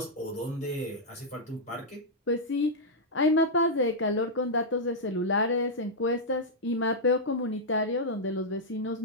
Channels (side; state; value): both; normal; correlation -0.06